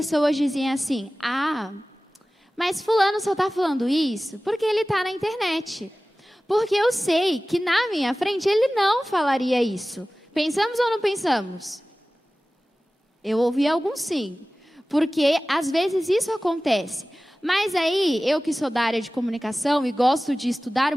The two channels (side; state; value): both; normal; correlation 0.97